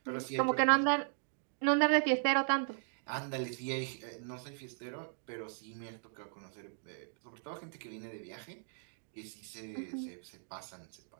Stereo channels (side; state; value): left; silent; digital silence